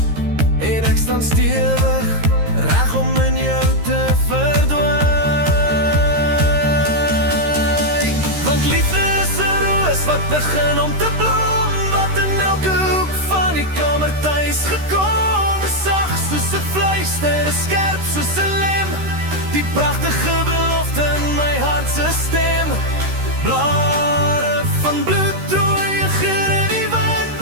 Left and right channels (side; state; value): left; late; 13 ms